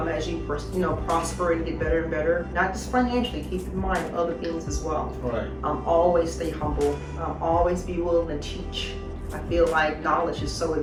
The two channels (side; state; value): both; identical; correlation 1.00